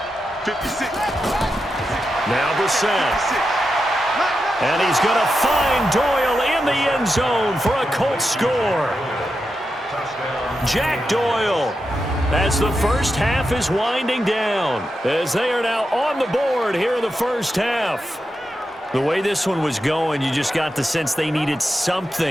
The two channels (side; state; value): both; normal; correlation 0.88